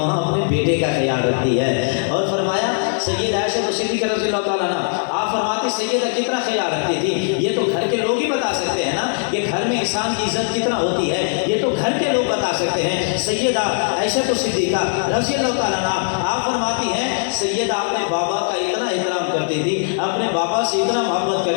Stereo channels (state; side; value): silent; right; 59 dB below the other